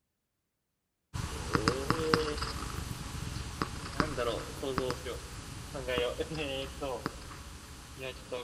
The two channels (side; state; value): both; identical; correlation 1.00